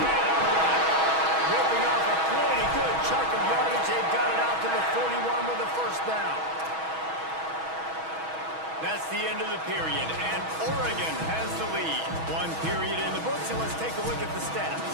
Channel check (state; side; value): late; left; 6.2 ms